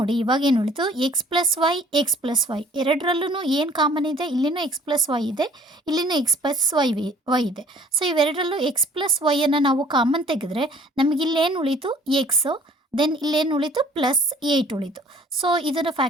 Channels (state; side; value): normal; both; correlation 0.54